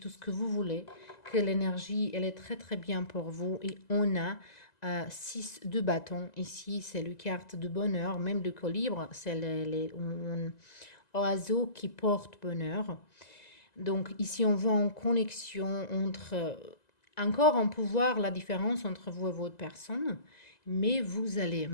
ce que vous voulez, que l'énergie, elle est très, très bien pour vous. Et on a 6 de bâtons. Ici, c'est le carte de bonheur, même le colibre, c'est les oiseaux qui portent bonheur. Donc ici, on voit en connexion entre, encore en pouvoir la différence entre vous et votre personne, mais vous allez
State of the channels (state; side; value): late; right; 2.0 ms